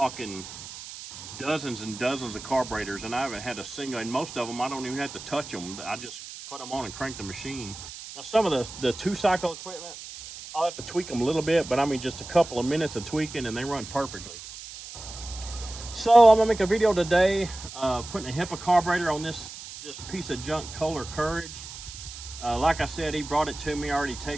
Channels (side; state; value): right; noise; hiss, 12 dB below the sound